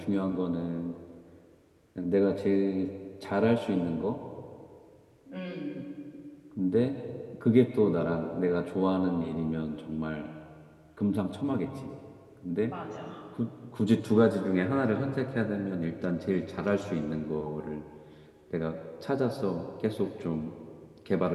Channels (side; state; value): both; identical; correlation 1.00